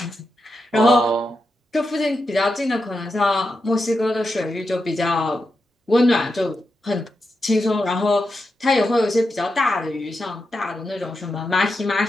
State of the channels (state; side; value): normal; both; correlation 0.87